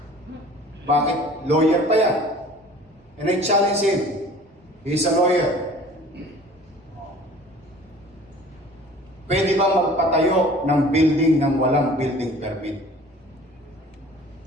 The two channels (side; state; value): both; normal; correlation 0.47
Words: Bakit? Lawyer pa yan. And I challenge him. He's a lawyer. Pwede ba magpatayo ng building ng walang building permit?